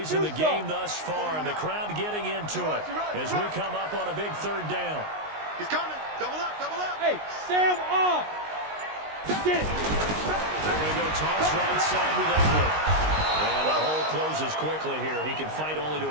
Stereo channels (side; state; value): left; late; 19 ms